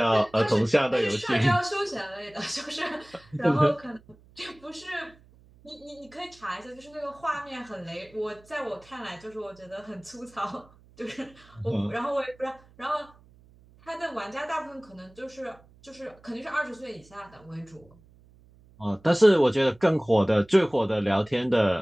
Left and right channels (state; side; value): noise; right; hum, 27 dB below the sound